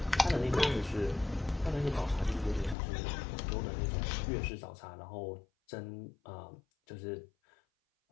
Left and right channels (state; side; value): drops out; right; at 2.8 s